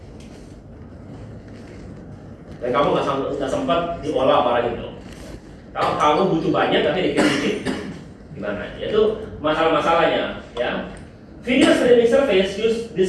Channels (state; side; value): identical; both; correlation 1.00